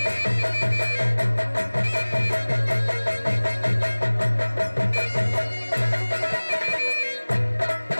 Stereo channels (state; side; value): inverted; both; correlation -1.00